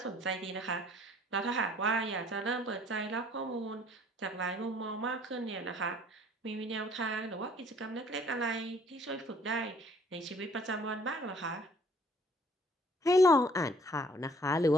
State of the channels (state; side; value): normal; both; correlation 0.59